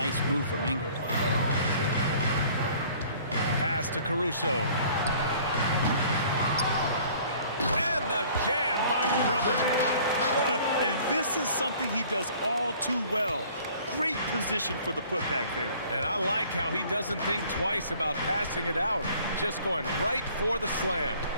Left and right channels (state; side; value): inverted; both; correlation -0.53